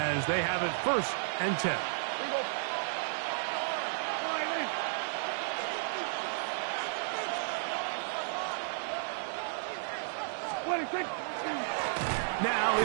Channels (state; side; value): silent; left; digital silence